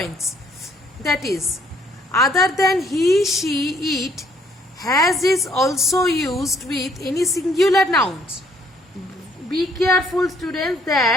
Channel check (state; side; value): normal; both; correlation 0.65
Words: that is, other than he, she, it, has is also used with any singular nouns. Be careful, students,